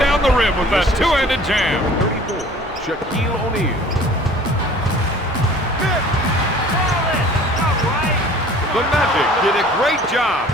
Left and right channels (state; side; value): normal; both; correlation 0.48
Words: the rim with that two-handed jam. 34, Shaquille O'Neal. The Magic did a great job.